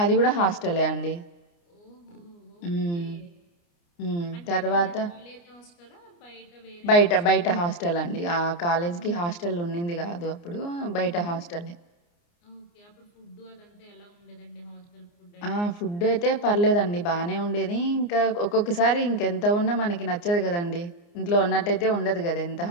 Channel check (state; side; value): late; right; 29 ms